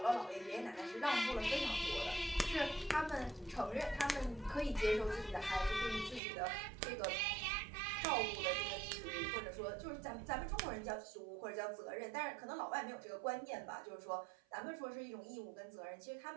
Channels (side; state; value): left; drops out; at 6.2 s